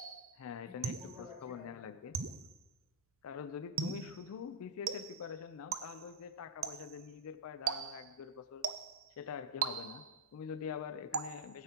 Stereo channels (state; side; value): normal; both; correlation -0.06